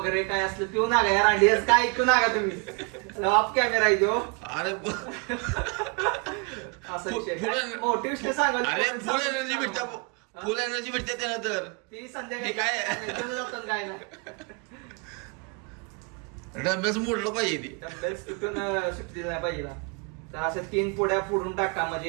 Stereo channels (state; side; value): quieter; left; 32.6 dB